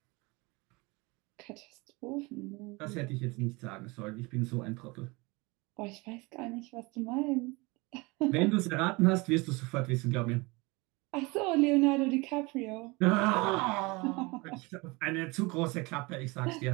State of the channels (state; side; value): quieter; left; 25.3 dB